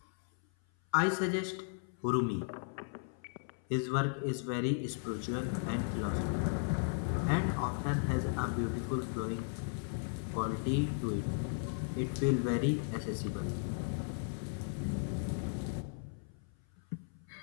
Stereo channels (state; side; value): silent; right; 54 dB below the other